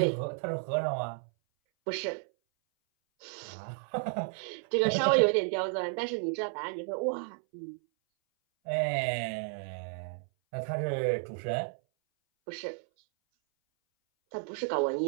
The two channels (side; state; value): left; silent; 56 dB below the other